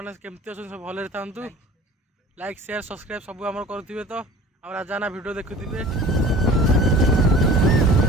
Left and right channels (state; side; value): normal; both; correlation 0.44